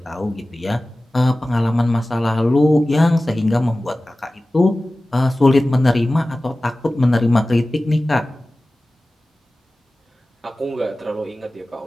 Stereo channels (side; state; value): both; normal; correlation 0.97